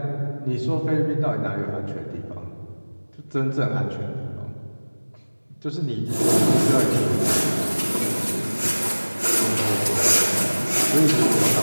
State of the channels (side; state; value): both; inverted; correlation -1.00